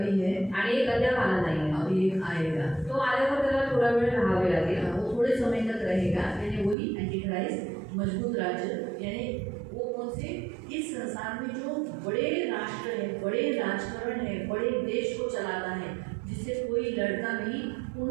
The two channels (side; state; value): left; drops out; at 6.8 s